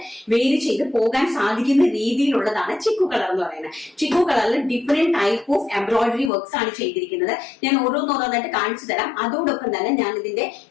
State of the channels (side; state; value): right; drops out; at 6.3 s